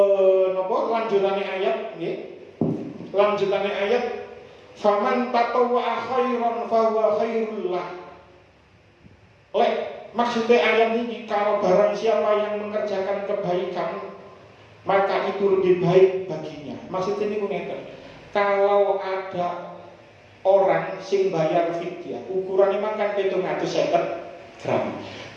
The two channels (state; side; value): identical; both; correlation 1.00